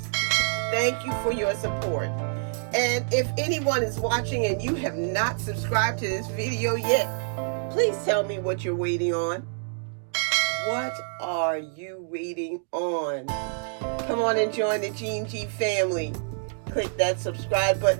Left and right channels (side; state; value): left; silent; digital silence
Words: Thank you for your support. And if anyone is watching and you have not subscribed to this video yet, please tell me what you're waiting on. What are you waiting on? Come on and join the Gene G family. Click that subscribe